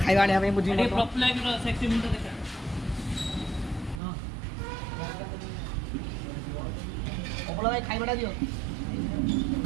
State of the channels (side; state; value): left; drops out; at 4.0 s